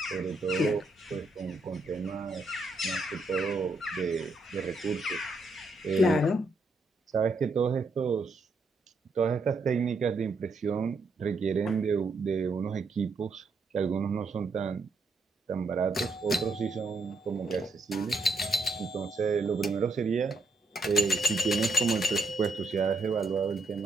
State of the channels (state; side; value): quieter; left; 3.1 dB